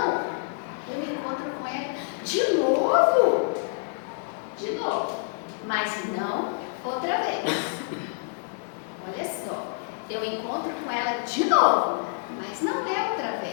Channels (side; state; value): right; silent; 60 dB below the other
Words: eu me encontro com ela de novo. De novo. Mas não outra vez. Olha só. Eu encontro com ela de novo. Mas não é outra